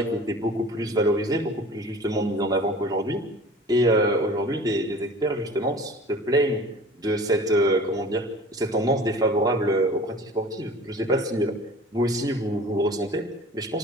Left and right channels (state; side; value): normal; both; correlation 0.43